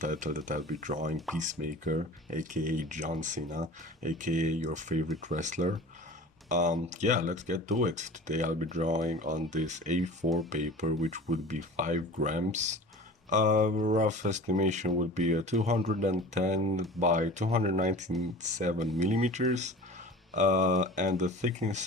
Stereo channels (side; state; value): both; normal; correlation 0.39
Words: that I'll be drawing Peacemaker, aka John Cena, aka your favorite wrestler. Yeah, let's get to it. Today I'll be drawing on this A4 paper, which would be 5 grams. Rough estimation would be a 210 by 297 millimeters, and a